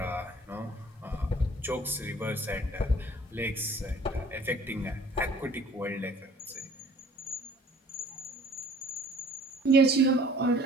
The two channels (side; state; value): both; normal; correlation 0.52